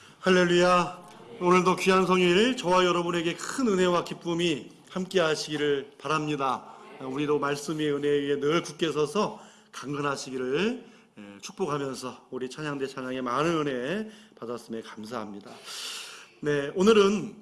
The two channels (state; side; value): identical; both; correlation 1.00